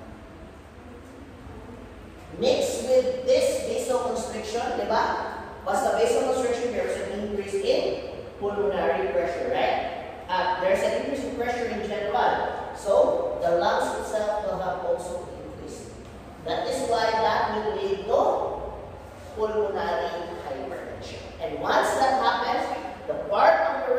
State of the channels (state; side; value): identical; both; correlation 1.00